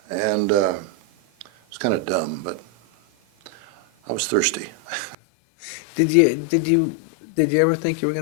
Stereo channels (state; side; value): drops out; right; at 5.2 s